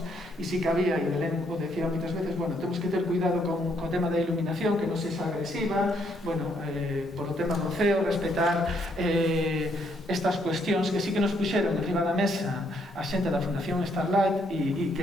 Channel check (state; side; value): normal; both; correlation 0.72